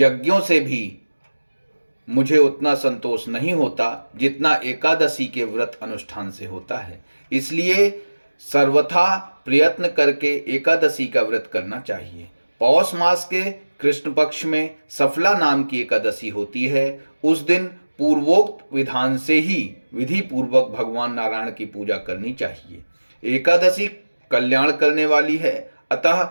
से भी मुझे उतना संतोष नहीं होता जितना एकादशी के व्रत अनुष्ठान से होता है। इसलिए सर्वथा प्रयत्न करके एकादशी का व्रत करना चाहिए। पौष मास के कृष्ण पक्ष में सफला नाम की एकादशी होती है। उस दिन पूर्वोक्त विधान से ही विधि पूर्वक भगवान नारायण की पूजा करनी चाहिए। एकादशी कल्याण करने वाली है, अतः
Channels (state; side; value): inverted; both; correlation -1.00